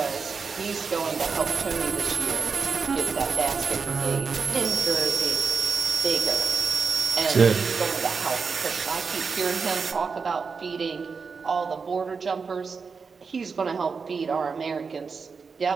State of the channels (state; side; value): quieter; left; 5.2 dB